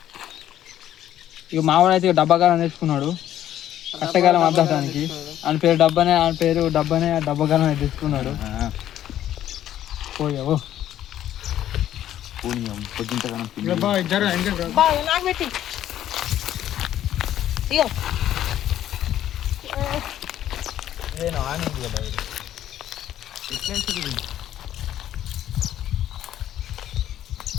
ఇక మావాడు అయితే డబ్బాగాలం తెచ్చుకున్నాడు కట్టగాలం అద్దడానికి. ఆయన పేరు డబ్బానే డబ్బాగాలం అయితే తెచ్చుకున్నాడు. పోయావు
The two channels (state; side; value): quieter; right; 11.8 dB